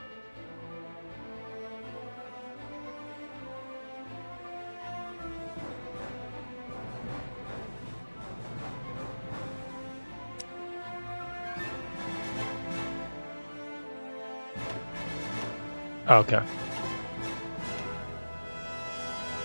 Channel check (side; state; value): both; inverted; correlation -1.00